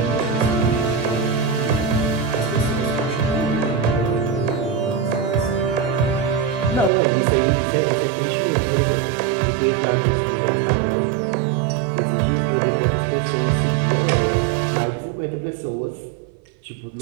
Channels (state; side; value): drops out; left; at 6.9 s